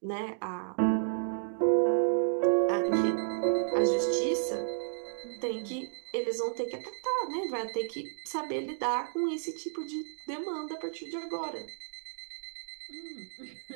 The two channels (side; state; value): left; silent; digital silence